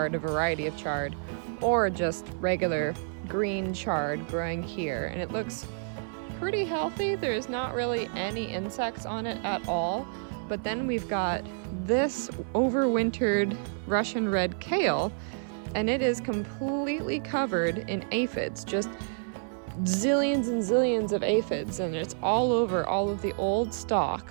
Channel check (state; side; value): silent; left; 59 dB below the other